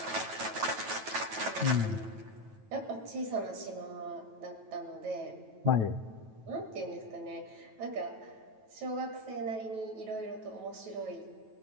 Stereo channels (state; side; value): late; left; 9.2 ms